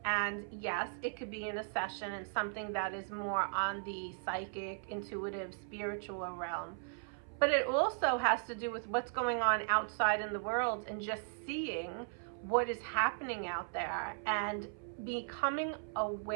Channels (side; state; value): left; silent; 53 dB below the other